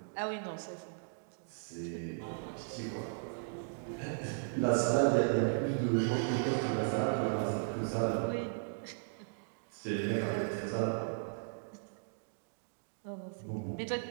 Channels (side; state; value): left; silent; digital silence